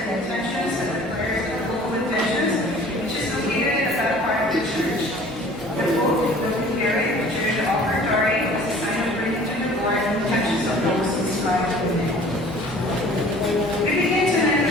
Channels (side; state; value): both; normal; correlation 0.49